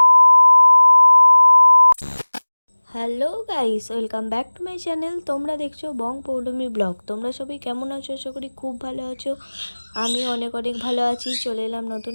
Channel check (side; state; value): both; inverted; correlation -1.00